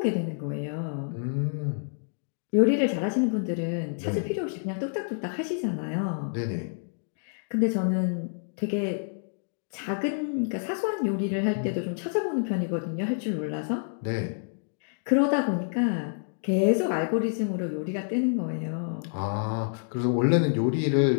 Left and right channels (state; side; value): silent; right; digital silence